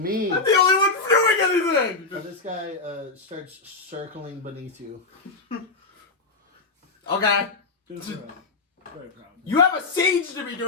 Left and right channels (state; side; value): quieter; right; 3.9 dB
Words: I'm the only one doing anything. This guy starts circling beneath you. Okay. Good for him. Very proud. You have a siege to be